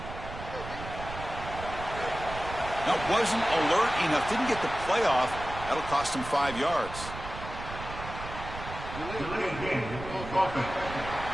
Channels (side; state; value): right; noise; rumble, 10 dB below the sound